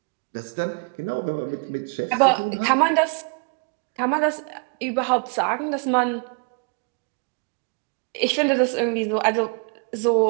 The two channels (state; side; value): quieter; left; 37.8 dB